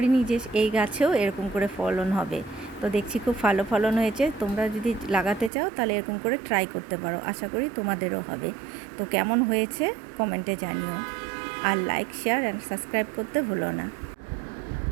যে এই গাছেও এরকম করে ফলন হবে। তো দেখছি খুব ভালো ফলন হয়েছে। তোমরা যদি লাগাতে চাও তাহলে এরকম করে ট্রাই করতে পারো, আশা করি তোমাদেরও হবে। তো কেমন হয়েছে কমেন্টে জানিও, আর লাইক, শেয়ার অ্যান্ড সাবস্ক্রাইব করতে ভুলো না।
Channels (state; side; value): drops out; left; at 5.5 s